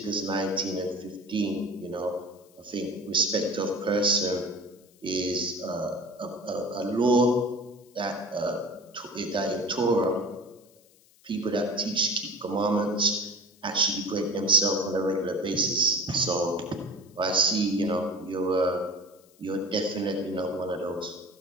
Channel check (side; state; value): left; noise; hiss, 29 dB below the sound